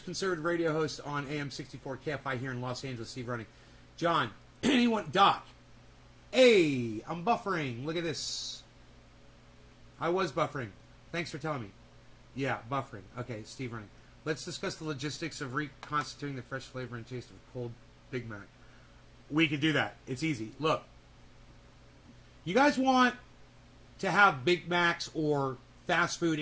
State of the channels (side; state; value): both; identical; correlation 1.00